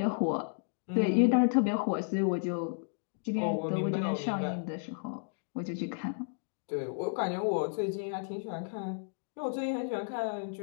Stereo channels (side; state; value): right; silent; digital silence